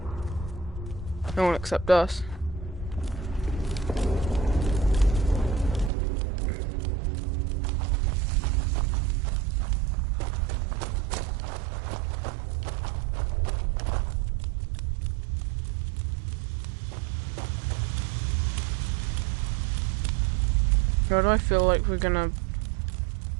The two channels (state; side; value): drops out; left; at 5.9 s